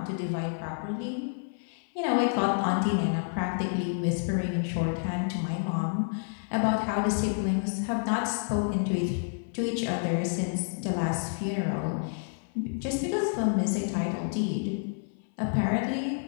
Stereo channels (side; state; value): right; silent; 57 dB below the other